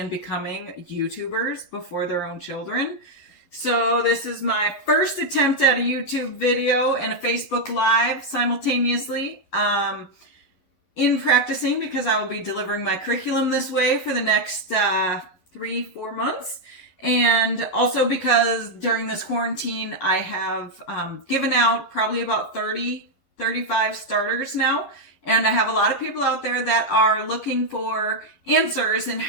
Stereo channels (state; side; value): late; right; 11 ms